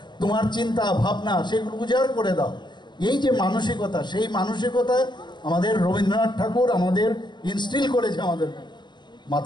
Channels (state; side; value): late; right; 0.22 ms